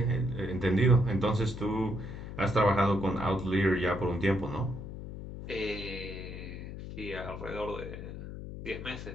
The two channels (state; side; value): noise; left; hum, 9 dB below the sound